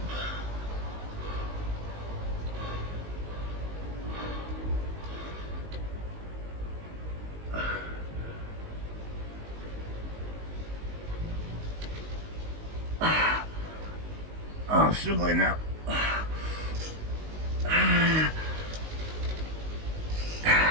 Oh, I'm struggling now.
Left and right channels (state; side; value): late; left; 19 ms